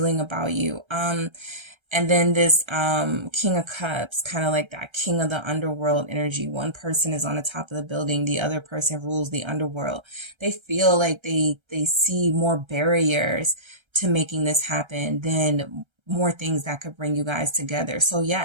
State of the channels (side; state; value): left; late; 1.3 ms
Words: about you. And then this King of Cups, kind of like that King of the Underworld energy. One person is on the top of the building. The other person rules the underworld. They feel like they see more barriers to making this happen than more things that could bring you guys together. So